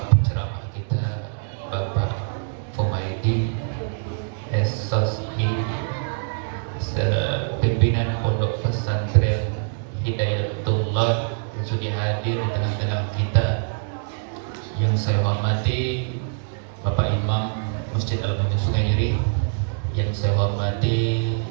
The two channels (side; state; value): left; silent; 63 dB below the other